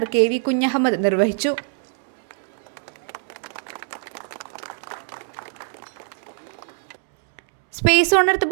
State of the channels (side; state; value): left; silent; 63 dB below the other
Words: KV Kunhahammed നിർവഹിച്ചു. സ്പേസ് ഓൺ എർത്ത്